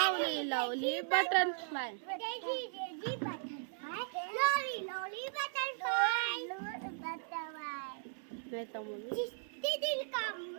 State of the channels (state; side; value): silent; left; 53 dB below the other